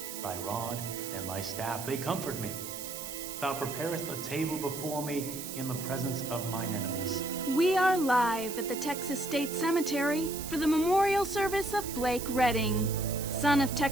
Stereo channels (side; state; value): right; noise; hiss, 9 dB below the sound